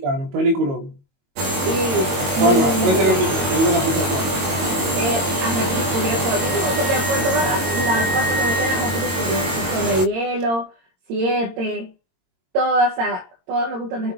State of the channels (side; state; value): left; late; 22 ms